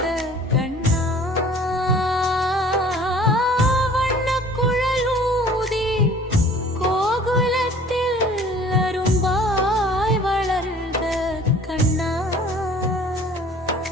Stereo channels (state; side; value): normal; both; correlation 0.50